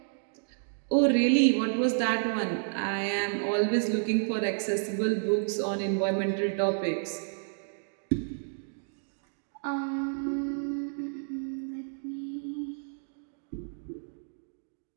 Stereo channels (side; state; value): left; silent; digital silence